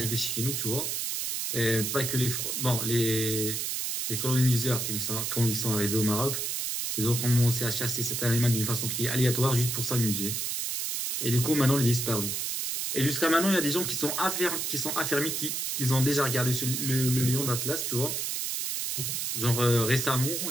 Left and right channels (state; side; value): noise; right; hiss, 1 dB below the sound